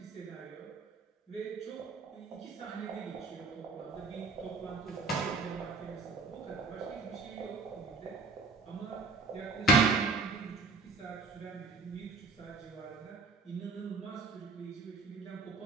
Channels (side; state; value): left; quieter; 3.8 dB